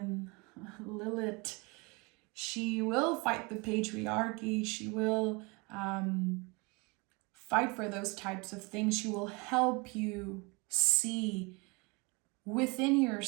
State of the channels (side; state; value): left; quieter; 28.1 dB